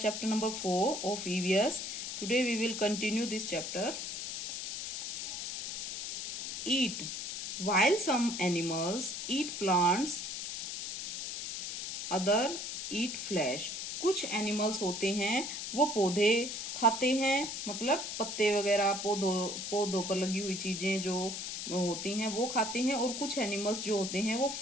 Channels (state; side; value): noise; left; hiss, 5 dB below the sound